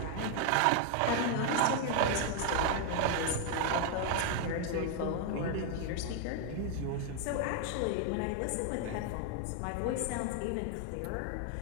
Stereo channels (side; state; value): both; different; correlation 0.00